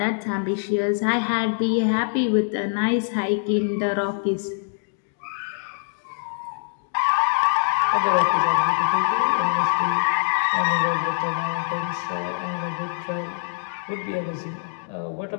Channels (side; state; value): right; silent; digital silence